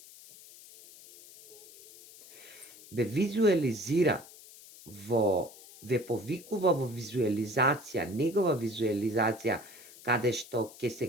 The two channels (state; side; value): noise; left; hiss, 20 dB below the sound